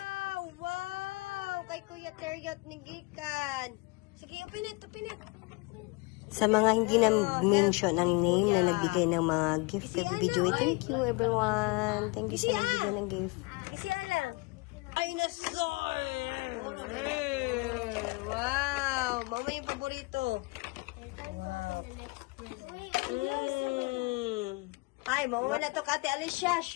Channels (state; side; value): quieter; right; 26.3 dB